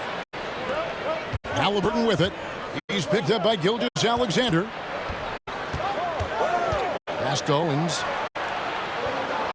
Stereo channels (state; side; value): identical; both; correlation 1.00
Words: Halliburton with it. He's picked up by Gilgeous-Alexander. Pass to Owens.